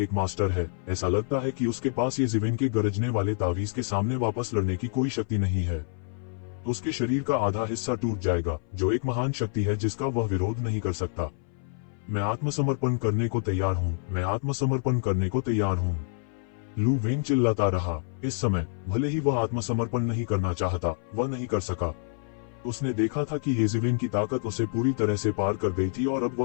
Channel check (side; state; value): right; silent; 58 dB below the other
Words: मास्टर है, ऐसा लगता है कि उसके पास येजिवेन के गरजने वाले तावीज के सामने वापस लड़ने की कोई शक्ति नहीं है। उसके शरीर का आधा हिस्सा टूट जाएगा, जो एक महान शक्ति है जिसका वह विरोध नहीं कर सकता। मैं आत्मसमर्पण करने को तैयार हूँ, मैं आत्मसमर्पण करने को तैयार हूँ। लू वेन चिल्लाता रहा। इस समय भले ही वह आत्मसमर्पण नहीं करना चाहता, वह नहीं कर सका। उसने देखा था कि येजिवेन की ताकत उसे पूरी तरह से पार कर गई थी और अब